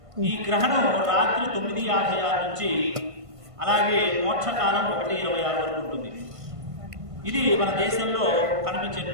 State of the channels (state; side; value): late; left; 1.5 ms